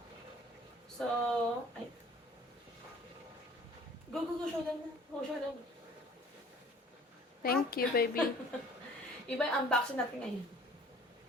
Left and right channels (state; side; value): normal; both; correlation 0.51